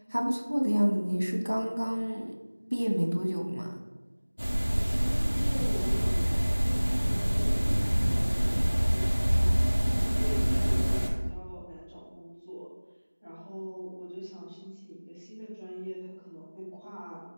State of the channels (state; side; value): inverted; both; correlation -1.00